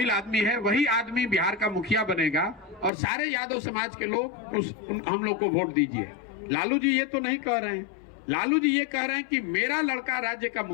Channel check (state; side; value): drops out; right; at 2.9 s